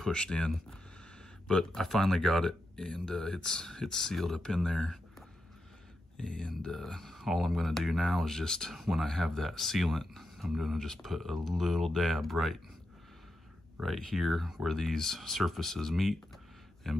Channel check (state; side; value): normal; both; correlation 0.87